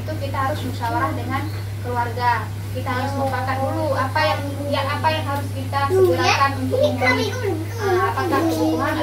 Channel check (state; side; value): identical; both; correlation 1.00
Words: kita harus musyawarah dengan keluarga. Kita harus mufakat dulu apa yang harus kita segerakan untuk memenuhi, apakah kebutuhan